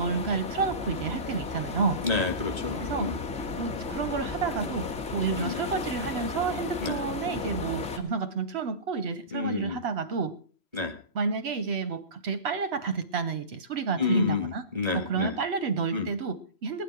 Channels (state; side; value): late; left; 3.0 ms